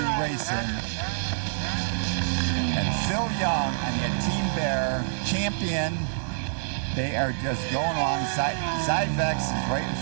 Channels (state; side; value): silent; left; digital silence